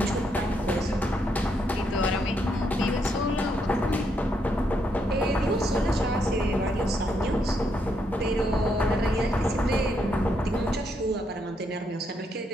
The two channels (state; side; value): normal; both; correlation 0.77